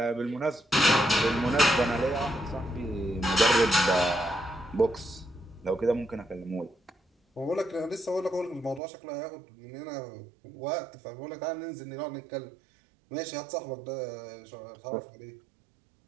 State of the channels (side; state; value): left; drops out; at 8.8 s